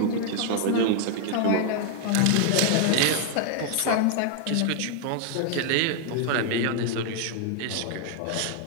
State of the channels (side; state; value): both; different; correlation 0.00